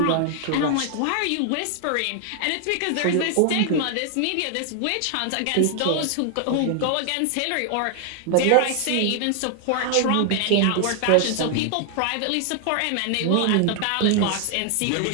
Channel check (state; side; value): different; both; correlation 0.00